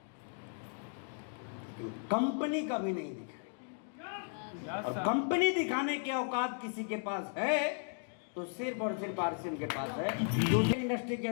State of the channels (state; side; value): silent; right; 54 dB below the other